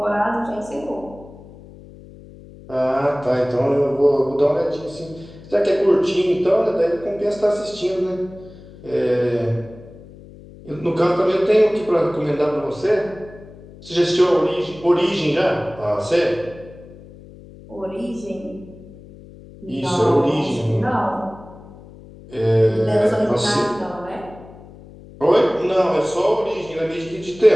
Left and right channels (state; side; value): noise; left; hum, 19 dB below the sound